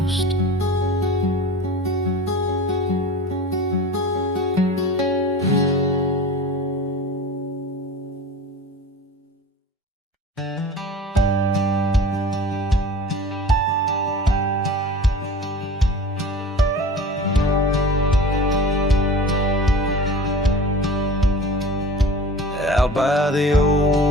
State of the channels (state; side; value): normal; both; correlation 0.38